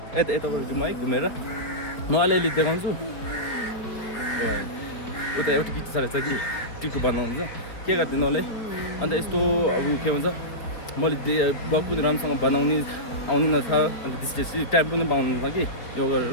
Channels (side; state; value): right; late; 4.8 ms